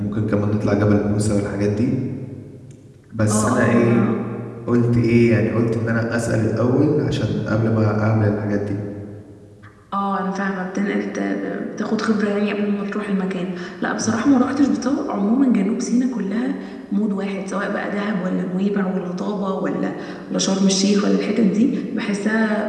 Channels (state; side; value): identical; both; correlation 1.00